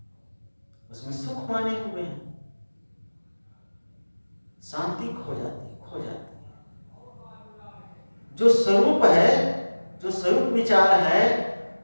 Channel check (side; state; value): both; inverted; correlation -1.00